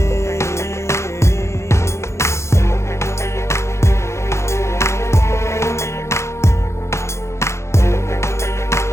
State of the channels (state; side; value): late; right; 0.13 ms